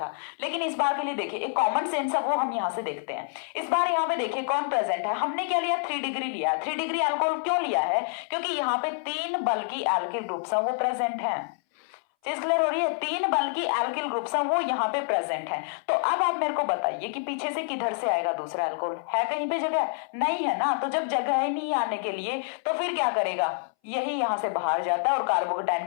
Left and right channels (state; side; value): silent; right; 59 dB below the other